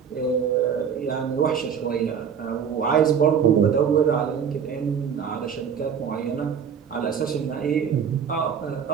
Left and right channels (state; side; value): quieter; left; 7.4 dB